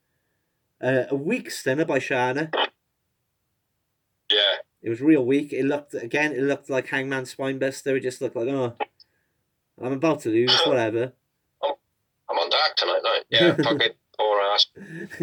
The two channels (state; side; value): identical; both; correlation 1.00